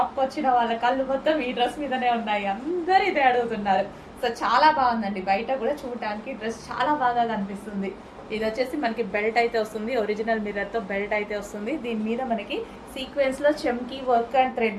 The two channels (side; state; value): both; identical; correlation 1.00